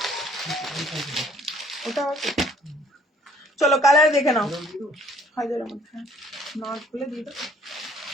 ওটা আছে। চলো কালার দেখে নাও, হাজারের মধ্যে না খুলে দিয়ে দাও।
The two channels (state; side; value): normal; both; correlation 0.60